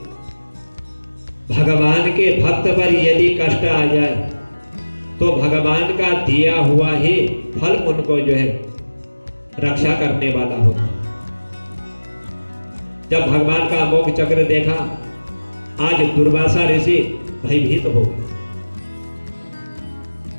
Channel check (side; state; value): both; inverted; correlation -1.00